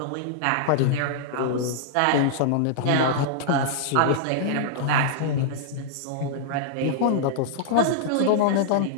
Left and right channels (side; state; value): both; different; correlation -0.02